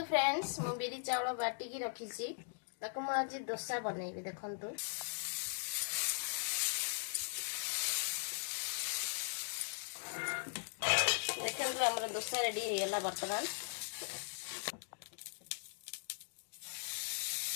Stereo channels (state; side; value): silent; right; digital silence